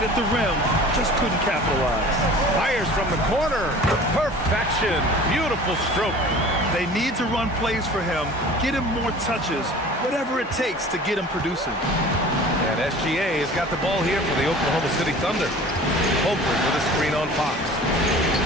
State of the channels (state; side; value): normal; both; correlation 0.43